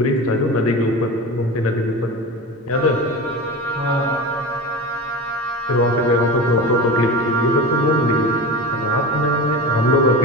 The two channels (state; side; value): normal; both; correlation 0.29